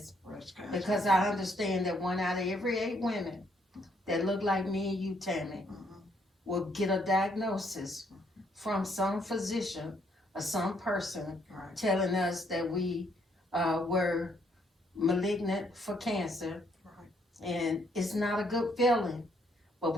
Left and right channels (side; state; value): both; normal; correlation 0.70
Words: because I understand that 1 out of every 8 women that look like me and you, Tammy, will get a diagnosis from some physician or some person telling us that we were malignant for cancer, and it's not a good feeling, but